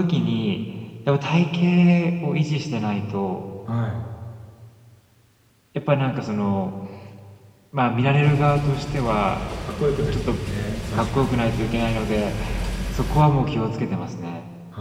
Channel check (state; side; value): identical; both; correlation 1.00